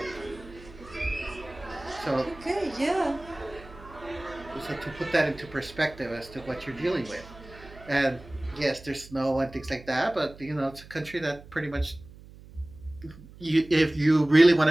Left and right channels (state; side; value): noise; right; hum, 19 dB below the sound